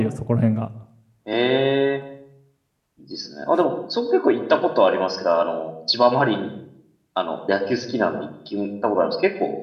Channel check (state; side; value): identical; both; correlation 1.00